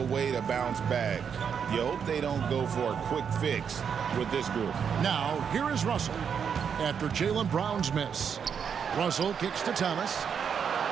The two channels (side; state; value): left; quieter; 7.2 dB